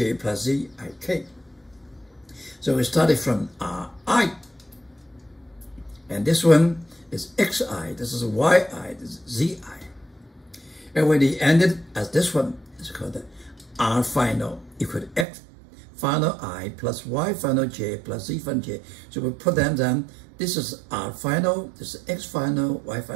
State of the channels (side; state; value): left; drops out; at 15.2 s